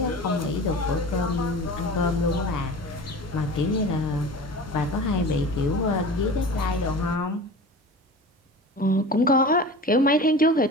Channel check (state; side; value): normal; both; correlation 0.35